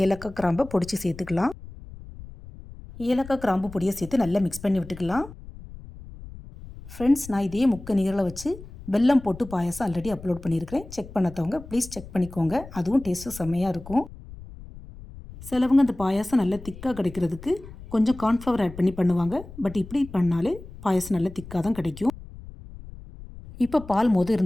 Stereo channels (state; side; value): noise; left; rumble, 16 dB below the sound